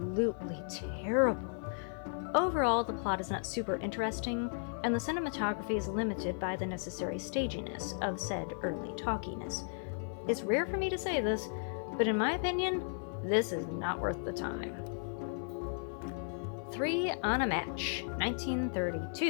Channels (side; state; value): right; silent; 54 dB below the other